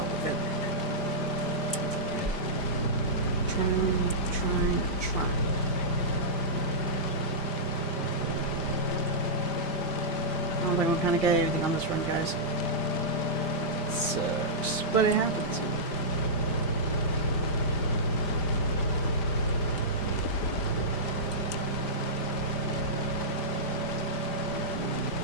with it. Trying. I don't think we kind of got everything on this run, guys. It sucks, but it happens.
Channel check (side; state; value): right; late; 5.0 ms